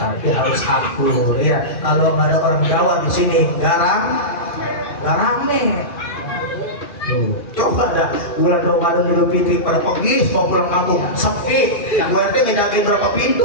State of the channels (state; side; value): late; right; 2.4 ms